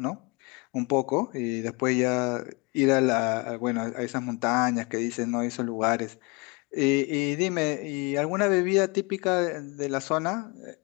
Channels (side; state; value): right; quieter; 28.6 dB